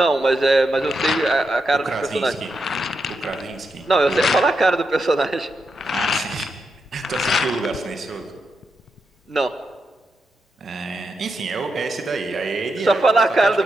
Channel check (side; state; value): both; normal; correlation 0.85